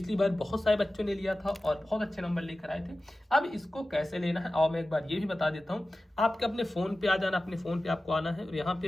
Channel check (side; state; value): both; normal; correlation 0.95